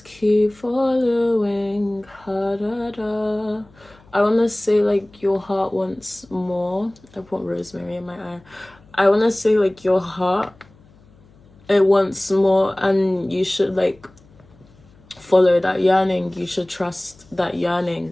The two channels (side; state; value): left; noise; hum, 28 dB below the sound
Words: keep following. Ha-da-da. I want to say like your heart wants more. I put rosemary in my eye. I want to say like your heart, it wants more, and you should like follow that yearning. You should trust that